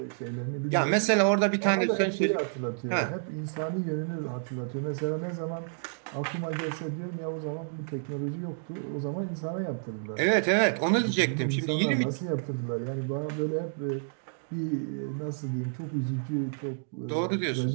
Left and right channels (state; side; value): silent; left; digital silence